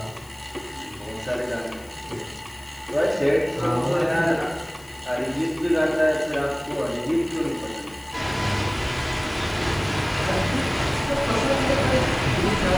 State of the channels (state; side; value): noise; left; hiss, 24 dB below the sound